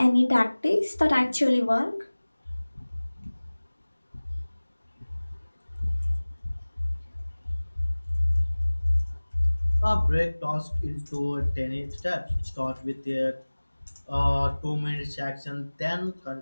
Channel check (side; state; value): both; inverted; correlation -1.00